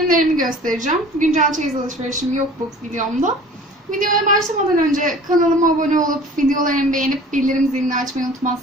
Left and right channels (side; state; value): both; normal; correlation 0.45